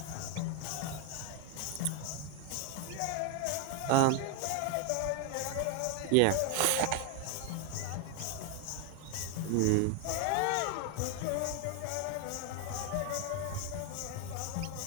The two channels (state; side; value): different; both; correlation 0.01